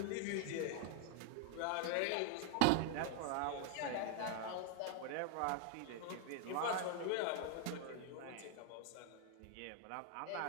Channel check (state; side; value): different; both; correlation 0.00